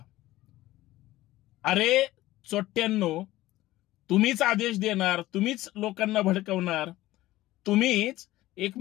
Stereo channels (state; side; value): quieter; right; 16.6 dB